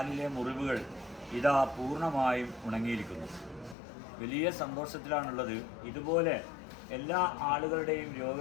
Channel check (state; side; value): drops out; right; at 3.8 s